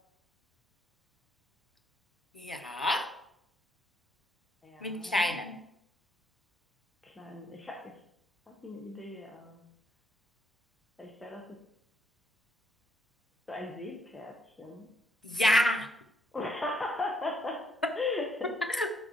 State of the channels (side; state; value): both; normal; correlation 0.73